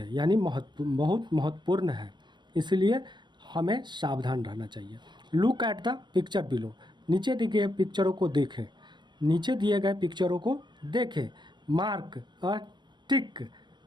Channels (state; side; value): late; left; 0.22 ms